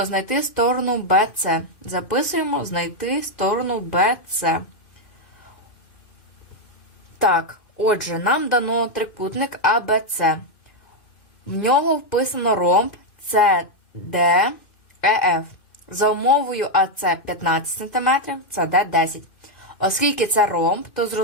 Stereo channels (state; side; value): late; right; 2.5 ms